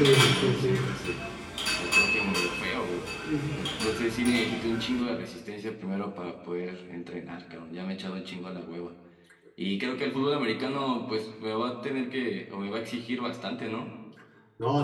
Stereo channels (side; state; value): both; identical; correlation 1.00